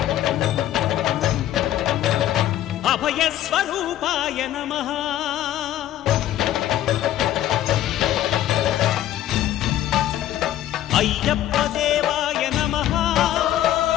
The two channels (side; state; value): right; quieter; 12.7 dB